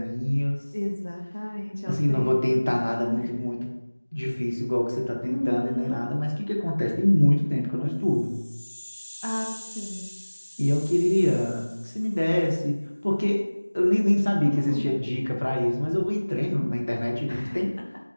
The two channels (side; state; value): both; inverted; correlation -1.00